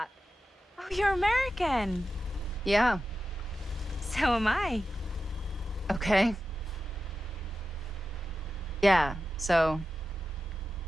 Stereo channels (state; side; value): normal; both; correlation 0.92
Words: Oh, you're American. Yeah. So am I. Okay. Yeah, so...